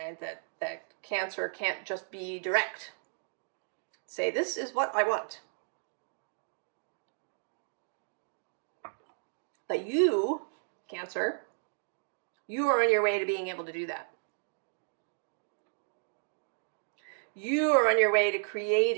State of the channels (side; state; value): left; silent; digital silence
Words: That Cancer can't just be direct. Say, this is what I want. But you, Cancer, you are on your way to being able to do that. You are on your way to